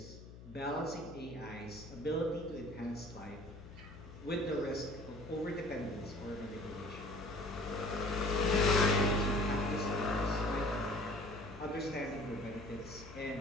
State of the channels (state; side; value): noise; left; hum, 15 dB below the sound